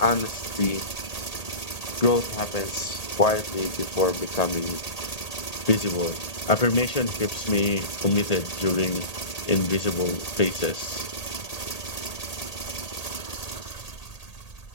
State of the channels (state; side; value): late; right; 1.8 ms